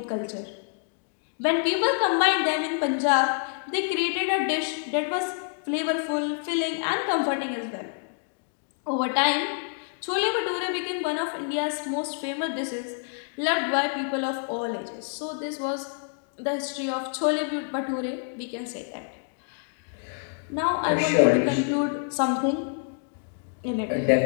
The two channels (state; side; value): silent; right; 60 dB below the other